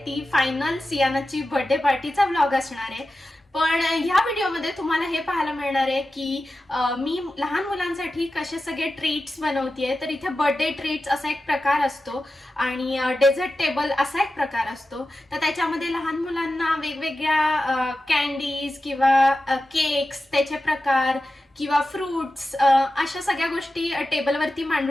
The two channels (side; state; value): both; normal; correlation 0.93